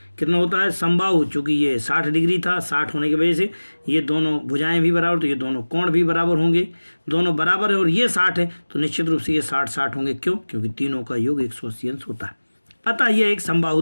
कितना होता है? समबाहु, चूंकि ये 60 डिग्री था, 60 होने की वजह से ये दोनों भुजाएं भी बराबर, तो ये दोनों कोण भी बराबर होंगे, दोनों बराबर है और ये 60 है तो निश्चित रूप से ये 60 होंगे। क्यों? क्योंकि तीनों का योग 180 अंश होता है। अतः ये एक समबाहु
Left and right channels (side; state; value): both; inverted; correlation -1.00